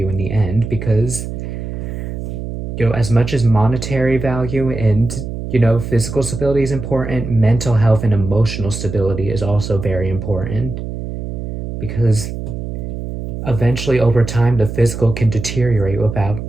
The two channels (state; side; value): noise; right; hum, 6 dB below the sound